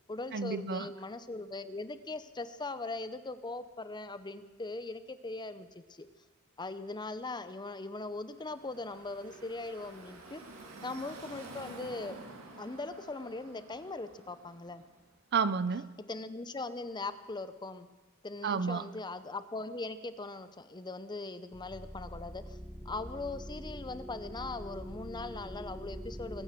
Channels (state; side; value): normal; both; correlation 0.37